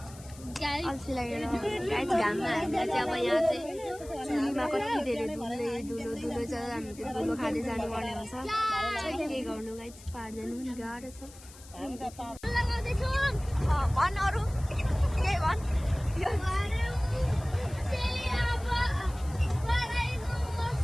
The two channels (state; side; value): noise; left; hiss, 20 dB below the sound